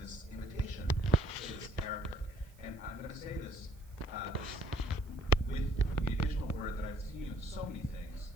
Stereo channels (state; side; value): noise; right; hiss, 28 dB below the sound